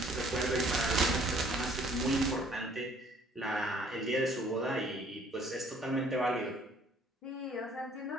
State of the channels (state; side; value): normal; both; correlation 0.59